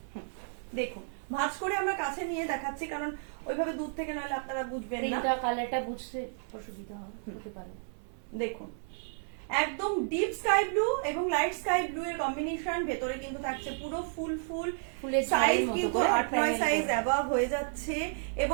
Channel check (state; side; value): silent; left; 57 dB below the other